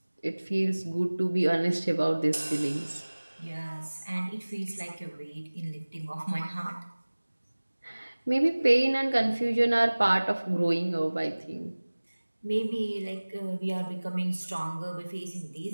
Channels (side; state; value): both; inverted; correlation -1.00